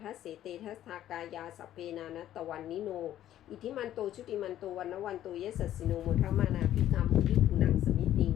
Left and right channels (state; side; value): quieter; right; 12.2 dB